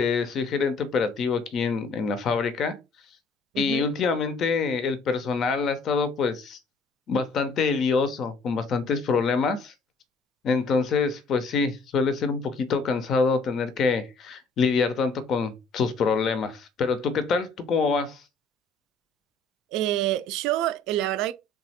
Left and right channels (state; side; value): quieter; right; 3.3 dB